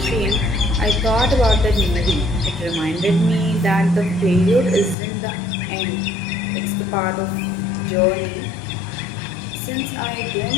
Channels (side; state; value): right; drops out; at 5.0 s